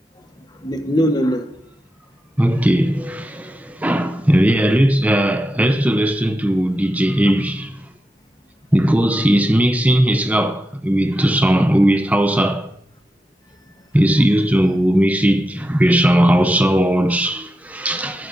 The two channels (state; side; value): normal; both; correlation 0.88